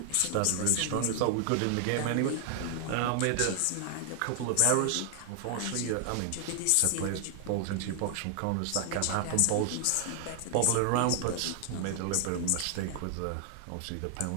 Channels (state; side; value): different; both; correlation 0.00